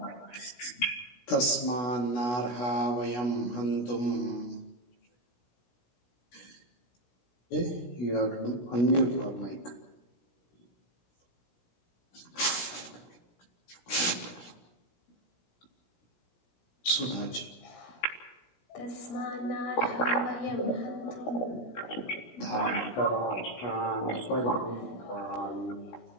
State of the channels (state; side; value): late; right; 16 ms